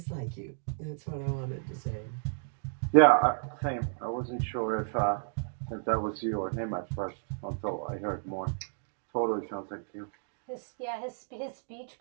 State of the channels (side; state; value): left; silent; digital silence